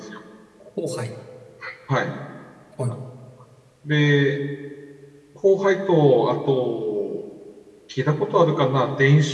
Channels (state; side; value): identical; both; correlation 1.00